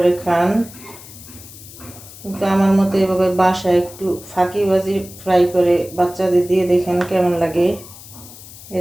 খান, কিন্তু আমার মতো এভাবে বাসায় একটু ফাঁকিবাজি ফ্রাই করে বাচ্চাদের দিয়ে দেখেন কেমন লাগে।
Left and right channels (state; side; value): noise; left; hiss, 18 dB below the sound